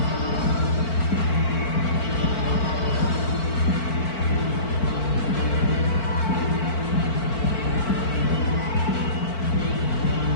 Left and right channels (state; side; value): late; right; 4.3 ms